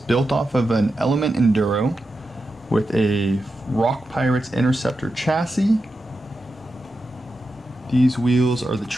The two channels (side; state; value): both; normal; correlation 0.89